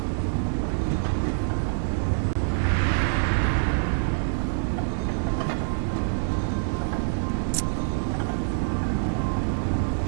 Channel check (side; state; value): left; silent; digital silence